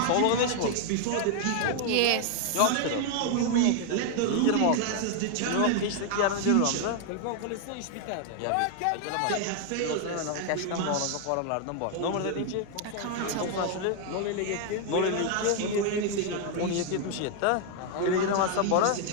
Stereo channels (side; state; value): both; different; correlation 0.00